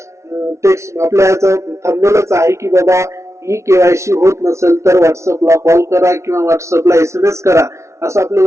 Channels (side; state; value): left; late; 0.14 ms